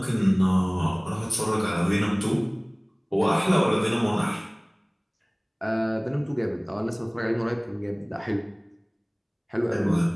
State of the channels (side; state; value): both; identical; correlation 1.00